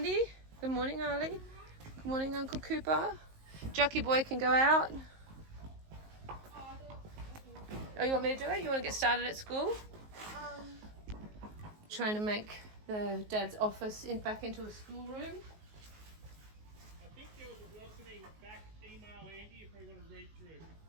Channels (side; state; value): left; late; 19 ms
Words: Good morning, Arlie. Good morning, Uncle Cooper. Jucky Boy can go out. Oh, you want me to do it? You want to get started at school? Trying to make the dad's office back into a schoolroom. I think there was a welcoming back email, Andy, if we want to read through.